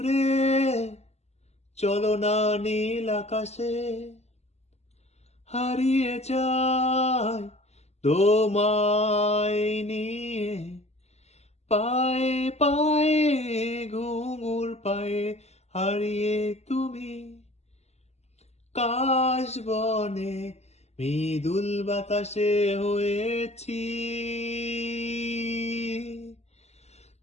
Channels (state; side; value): late; right; 0.31 ms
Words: চলো না নীল আকাশে হারিয়ে যায় তোমায় নিয়ে পায়ে পায়ে ঘুঙুর পায়ে হারিয়ে তুমি কাশ বনে মৃদুল বাতাসে হয়েছি